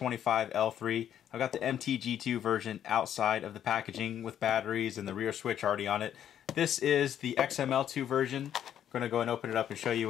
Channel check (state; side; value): quieter; right; 10.1 dB